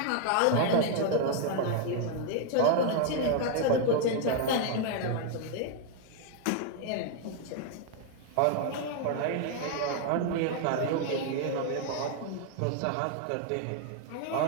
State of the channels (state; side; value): different; both; correlation 0.00